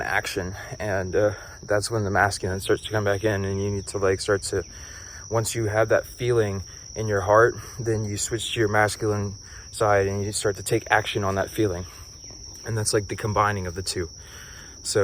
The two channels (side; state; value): both; identical; correlation 1.00